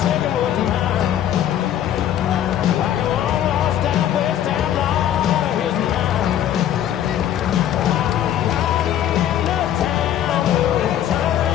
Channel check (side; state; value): right; quieter; 10.9 dB